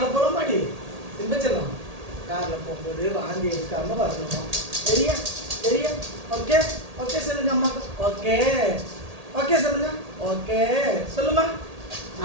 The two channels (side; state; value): left; late; 1.8 ms